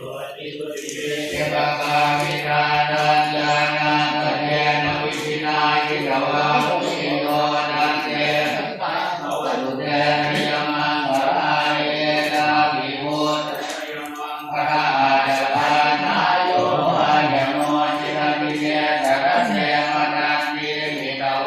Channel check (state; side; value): identical; both; correlation 1.00